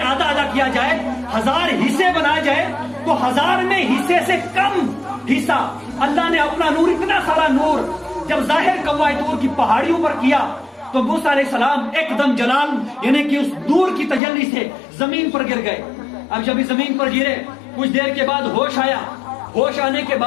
آدھا آدھا کیا جائے، 1000 حصے بنائے جائے تو 1000 میں حصے سے کم حصہ اللہ نے اپنا نور، اتنا سارا نور جب ظاہر کوہ طور کی پہاڑیوں پر کیا تو موسیٰ علیہ السلام ایک دم جلال، یعنی کہ اس نور کی تجلی سے زمین پر گر گئے۔ اب جب زمین پر گرے کچھ دیر کے بعد ہوش آیا، ہوش آنے کے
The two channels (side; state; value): right; drops out; at 14.2 s